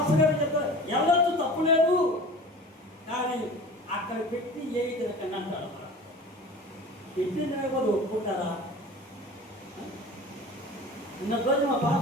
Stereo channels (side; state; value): both; normal; correlation 0.38